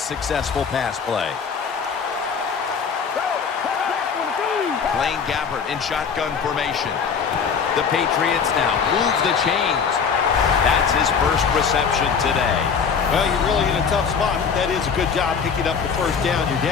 successful pass play. Blaine Gabbert in shotgun formation. The Patriots now move the chains. That's his first reception today. Well, you're really in a tough spot. That is a good job picking up the first down. You're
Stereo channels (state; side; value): quieter; right; 6.2 dB